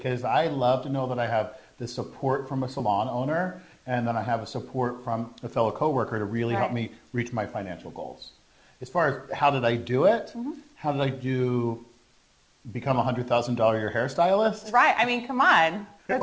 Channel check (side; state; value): both; identical; correlation 1.00